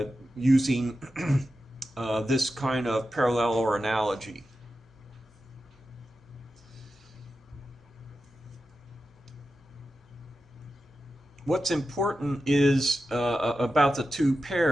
using this kind of parallel or analogy. What's important is about the two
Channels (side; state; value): left; noise; hum, 29 dB below the sound